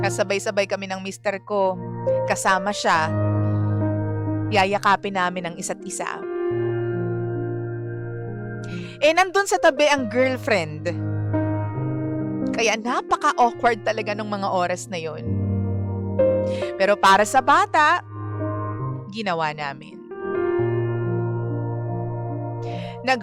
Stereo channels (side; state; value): both; identical; correlation 1.00